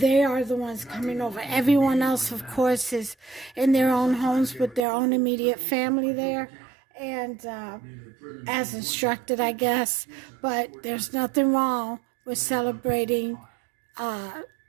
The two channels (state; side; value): drops out; left; at 4.8 s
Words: are the ones coming over. Everyone else, of course, is in their own homes with their own immediate family there, and as instructed, I guess. But there's nothing wrong with celebrating